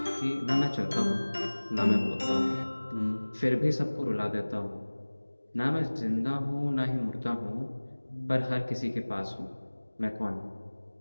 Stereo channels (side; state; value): both; inverted; correlation -1.00